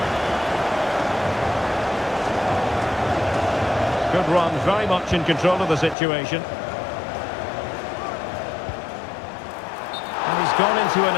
Good run, very much in control of the situation. And he's gone into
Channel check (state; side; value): drops out; right; at 6.0 s